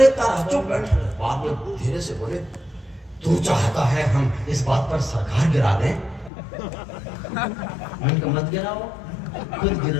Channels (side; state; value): right; drops out; at 6.3 s